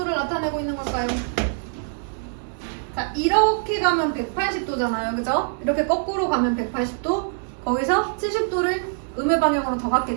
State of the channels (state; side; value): silent; left; 63 dB below the other